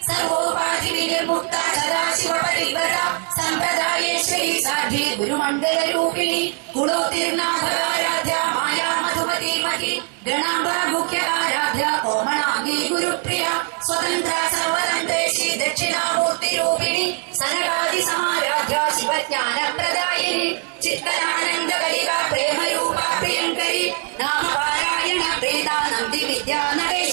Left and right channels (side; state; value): left; quieter; 37.8 dB